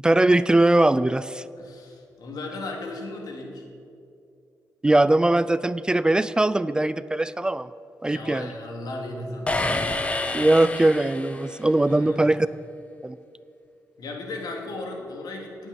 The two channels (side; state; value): both; normal; correlation 0.95